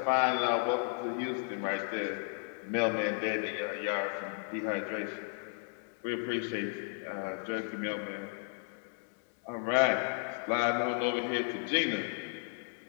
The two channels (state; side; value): silent; right; 55 dB below the other